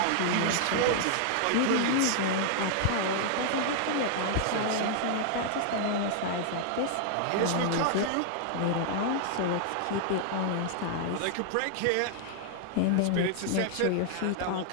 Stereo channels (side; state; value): both; different; correlation -0.01